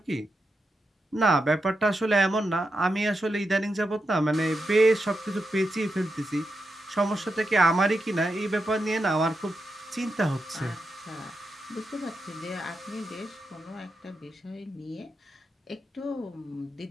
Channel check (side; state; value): both; normal; correlation 0.87